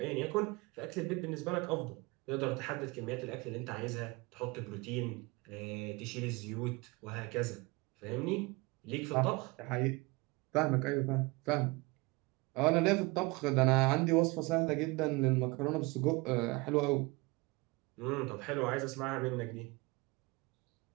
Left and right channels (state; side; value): quieter; left; 24.9 dB